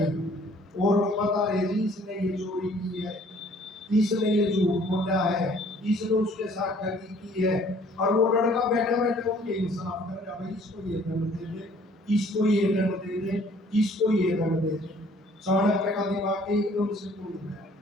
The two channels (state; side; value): normal; both; correlation 0.57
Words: और बता रहे जी इसने ये चोरी की है, इसने ये झूठ बोला है, इसने उसके साथ ठगी की है। और वो लड़का बैठा बैठा उनके इंसाफ कर रहा, भाई इसको ये दंड दे दे, इसको ये दंड दे दे, इसको ये दंड दे दे। चाणक्य का दिमाग एकदम से खुल गया